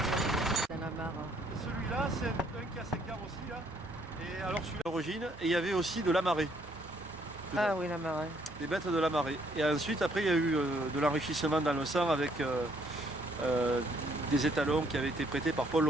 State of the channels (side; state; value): both; normal; correlation 0.67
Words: Dans la mare. Celui-là, c'est un qui a 5 ans aussi, là. Et alors celui-là, d'origine, et il y avait aussi de la marée. Ah oui, la marée. Des bêtes de la marée. Et ensuite, après, il y a eu de l'enrichissement dans le sang avec des étalons qui avaient été prêtés par Paul